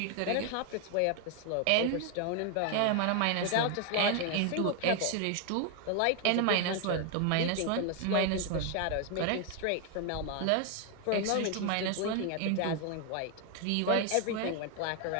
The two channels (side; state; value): both; different; correlation 0.01